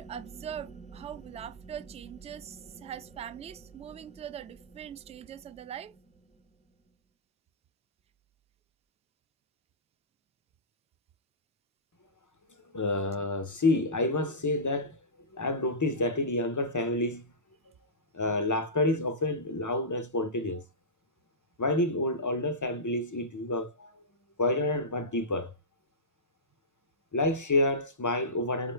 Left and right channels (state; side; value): normal; both; correlation -0.19